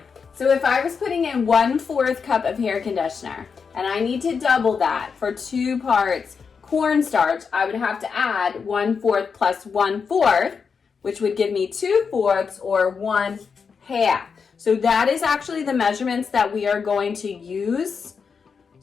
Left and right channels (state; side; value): quieter; right; 5.8 dB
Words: So if I was putting in 1/4 cup of hair conditioner and I need to double that for 2 parts cornstarch, I would have to add 1/4 plus 1/4, which would give me 2/4 or 1/2. So that is actually the measurements that we are going to use